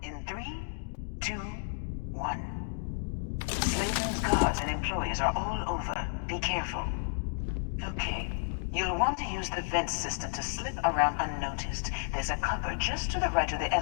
in 3, 2, 1. Slayton's guards and employees are all over. Be careful. Okay. You'll want to use the vent system to slip around unnoticed. There's a cupboard just to the right of the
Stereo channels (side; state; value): right; silent; digital silence